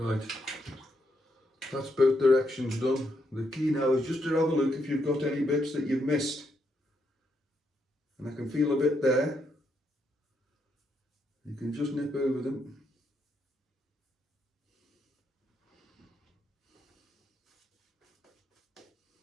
that's both directions done. The key now is just to have a look if you've got any bits that you've missed. And I can feel a bit there. You can just nip over them.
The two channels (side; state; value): both; normal; correlation 0.78